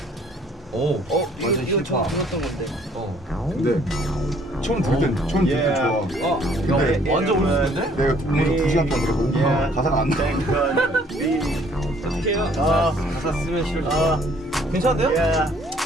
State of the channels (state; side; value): normal; both; correlation 0.60